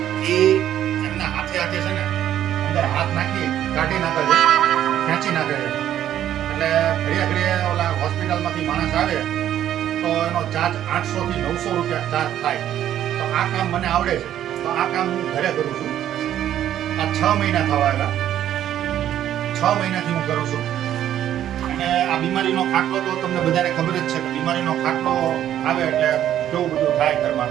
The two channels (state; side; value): quieter; left; 11.3 dB